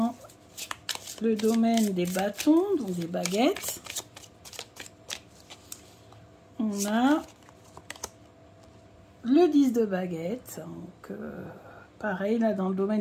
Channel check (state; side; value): identical; both; correlation 1.00